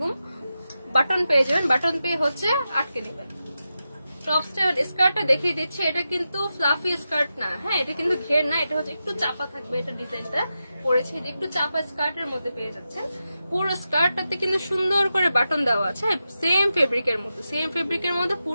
বাটন পেয়ে যাবেন, বাটন পেয়ে হচ্ছে আটকে দিবেন। টপসটা স্কার্টটা দেখিয়ে দিচ্ছি, এটা কিন্তু ফ্লাফি স্কার্ট না। হ্যাঁ, এটা কিন্তু ঘের না, এটা হচ্ছে একটু চাপা থাকবে। এটা ডিজাইনটা করেছে একটু চাপা স্কার্টের মধ্যে পেয়ে যাচ্ছেন। পুরো স্কার্টটাতে কিন্তু সুন্দর করে বাটন দেওয়া আছে, সেম ফেব্রিকের মধ্যে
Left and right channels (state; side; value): inverted; both; correlation -0.90